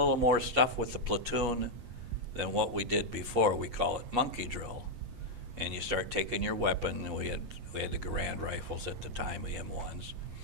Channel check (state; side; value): late; left; 8.4 ms